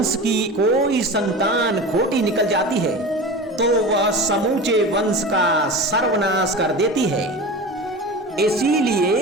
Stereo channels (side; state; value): both; normal; correlation 0.31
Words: की कोई संतान खोटी निकल जाती है तो वह समूचे वंश का सर्वनाश कर देती है।